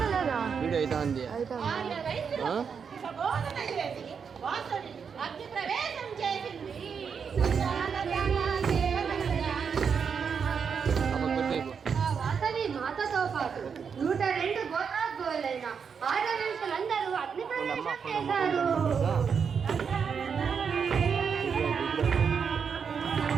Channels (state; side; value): quieter; left; 6.4 dB